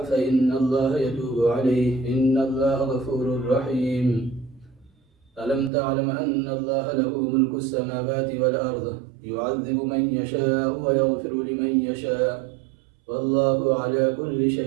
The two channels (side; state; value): left; drops out; at 5.7 s